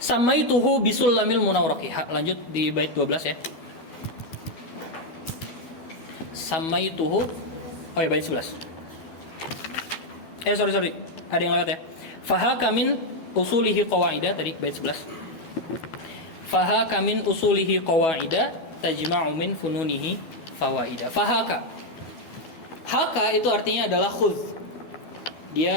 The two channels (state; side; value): late; right; 12 ms